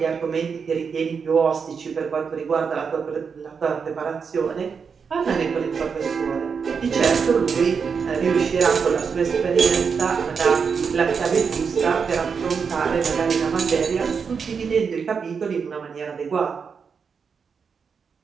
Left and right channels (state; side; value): quieter; left; 6.0 dB